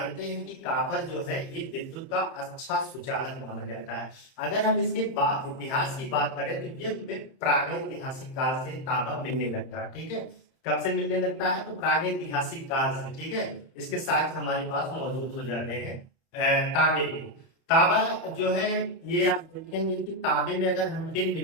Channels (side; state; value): right; late; 30 ms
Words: हैं कि कॉपर जो है ये विद्युत का अच्छा सुचालक माना जाता है। अगर हम इसके इतिहास की बात करें तो ये हमें प्रागैतिहासिक काल से तांबा मिलने लगता है। ठीक है, कब से मिलने लगता है? तो प्रागैतिहासिक काल से। ठीक है, इसके साक्ष्य हमारे पास मौजूद हो जाते हैं तांबे के। तांबा जो है ये आप देखेंगे कि तांबे में अगर हम टिन